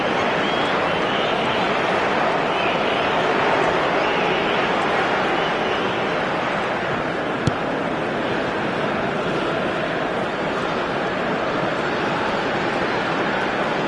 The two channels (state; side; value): identical; both; correlation 1.00